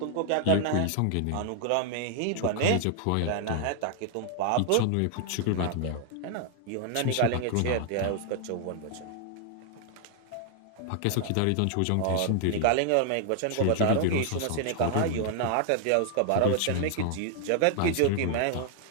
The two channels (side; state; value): both; different; correlation 0.00